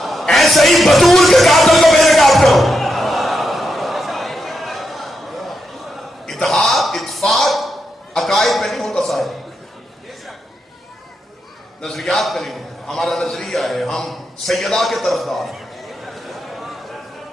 ایسے ہی بطول کے قاتل کو بے نقاب کرو. نظریہ ہے ہم سیدہ کے طرفدار ہیں.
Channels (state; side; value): normal; both; correlation 0.84